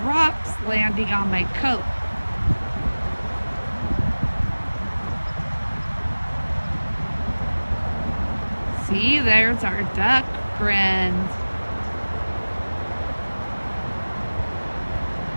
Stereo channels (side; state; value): both; inverted; correlation -1.00